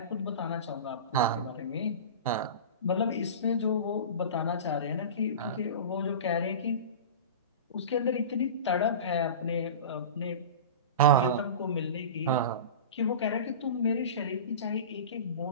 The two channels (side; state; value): both; inverted; correlation -0.31